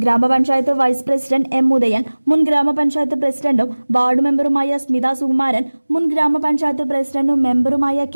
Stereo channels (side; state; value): both; inverted; correlation -1.00